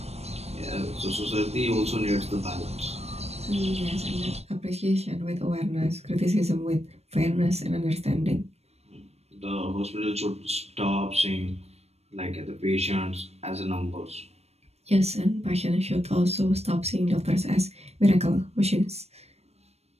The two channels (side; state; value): left; late; 0.31 ms